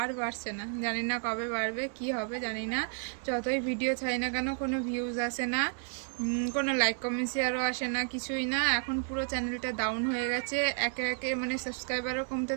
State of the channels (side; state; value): left; silent; 57 dB below the other